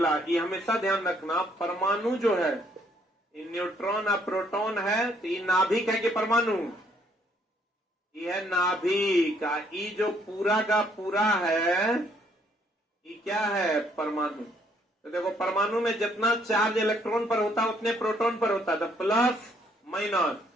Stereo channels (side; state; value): both; normal; correlation 0.67